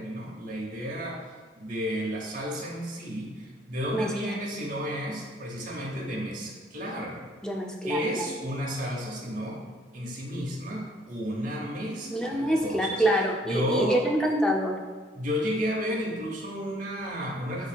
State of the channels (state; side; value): normal; both; correlation 0.62